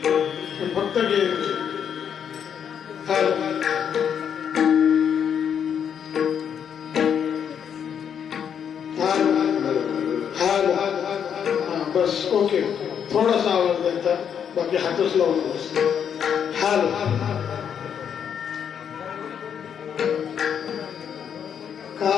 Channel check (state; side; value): quieter; right; 8.1 dB